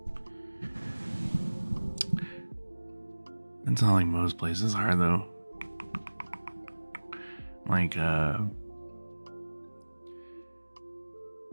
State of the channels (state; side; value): inverted; both; correlation -1.00